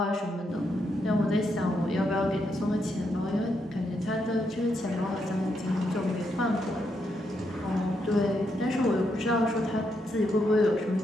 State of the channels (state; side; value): normal; both; correlation 0.80